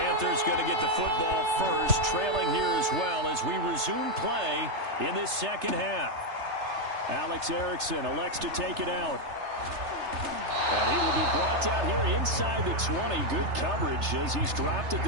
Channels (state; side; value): late; left; 3.3 ms